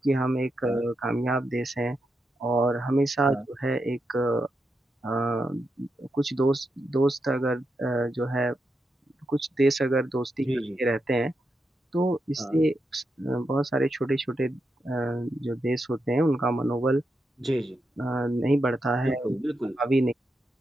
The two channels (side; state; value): both; normal; correlation 0.85